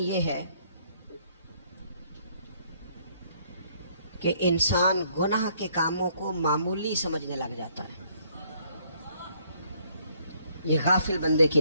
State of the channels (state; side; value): inverted; both; correlation -0.66